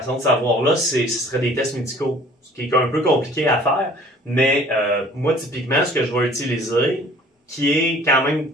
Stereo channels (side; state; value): both; normal; correlation 0.52